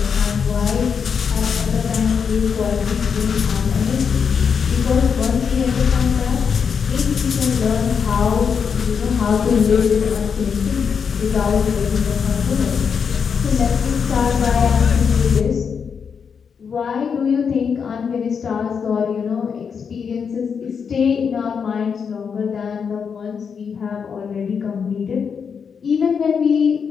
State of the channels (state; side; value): quieter; right; 6.5 dB